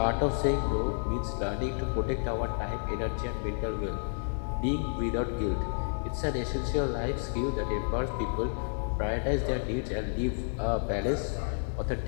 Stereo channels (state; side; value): silent; right; digital silence